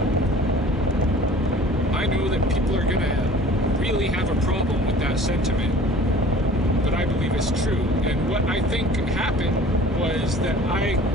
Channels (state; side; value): normal; both; correlation 0.47